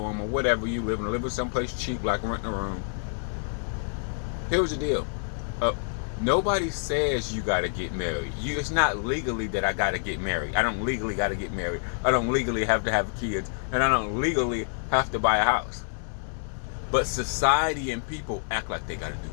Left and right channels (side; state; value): right; silent; digital silence